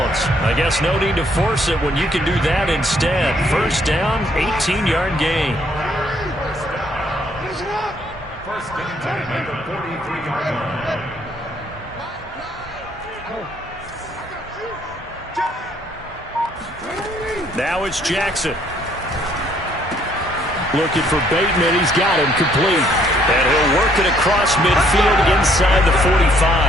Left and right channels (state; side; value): normal; both; correlation 0.66